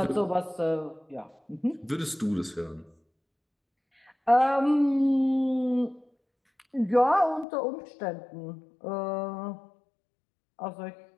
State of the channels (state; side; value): drops out; right; at 7.5 s